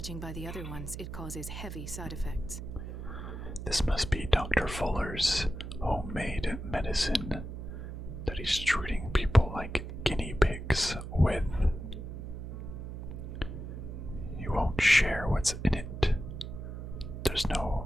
by the other ones, it causes heavy side effects. This must be Dr. Fuller's homemade medicine that he's treating people like guinea pigs with. He won't share what's in it. There's no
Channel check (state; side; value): noise; right; hum, 8 dB below the sound